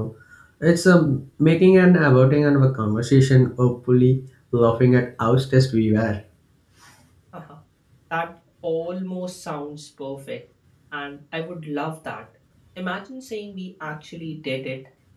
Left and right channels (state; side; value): identical; both; correlation 1.00